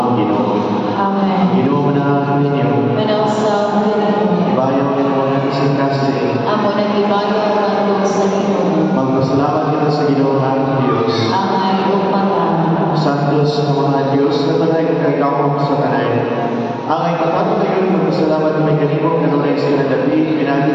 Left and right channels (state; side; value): identical; both; correlation 1.00